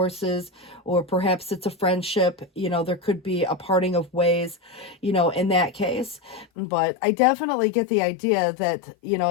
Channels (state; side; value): drops out; right; at 6.5 s